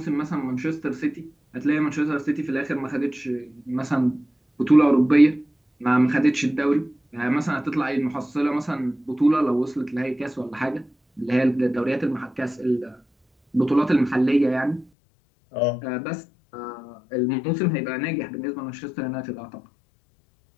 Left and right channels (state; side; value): drops out; right; at 14.9 s